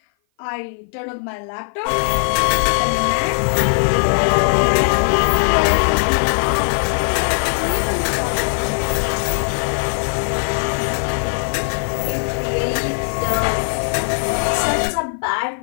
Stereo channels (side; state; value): right; silent; 56 dB below the other